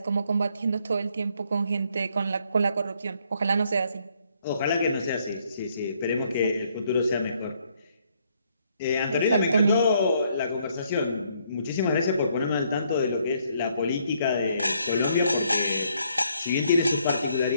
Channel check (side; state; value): both; inverted; correlation -0.70